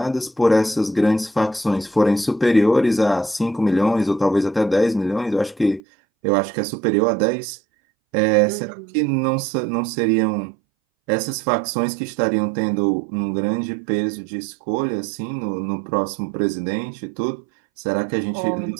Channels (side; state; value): left; drops out; at 5.8 s